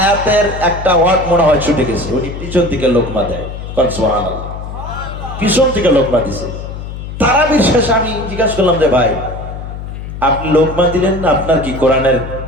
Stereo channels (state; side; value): noise; left; hum, 9 dB below the sound